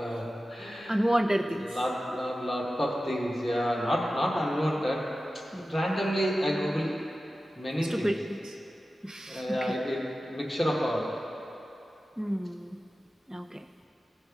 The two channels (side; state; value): both; normal; correlation 0.94